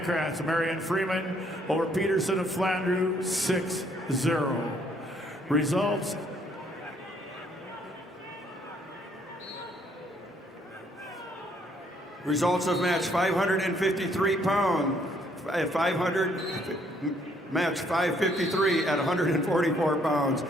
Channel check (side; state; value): both; normal; correlation 0.67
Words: of Marion Freeman over Peterson of Flandreau, 6-0. Results. Results of match 553 pound, match 553 at 144 pounds.